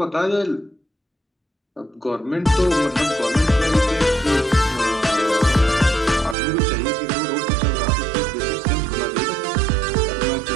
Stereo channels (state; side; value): drops out; left; at 6.4 s